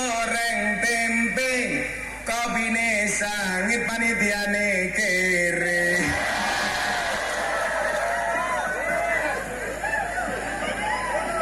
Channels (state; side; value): identical; both; correlation 1.00